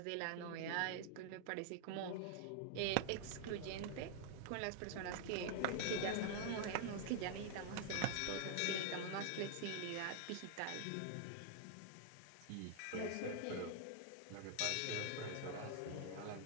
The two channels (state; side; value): different; both; correlation 0.00